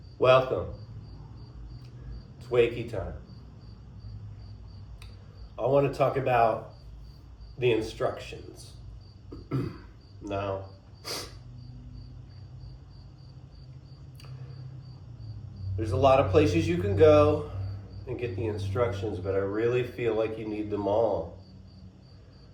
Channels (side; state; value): both; identical; correlation 1.00